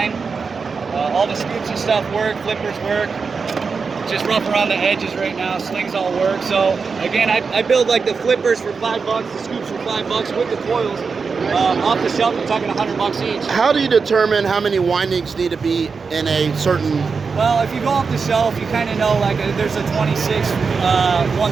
All the scoops and stuff work, flippers work. Just rough around the edges right now, slings all work. So again, I build like the flippers for $5, the scoops for $5 with the coils. Off the shelf, you're talking $100 each. How do you determine how many windings need to be in a certain? Well, if you go off the shelf, you kind of know like there's a 26,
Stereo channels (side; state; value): left; quieter; 5.1 dB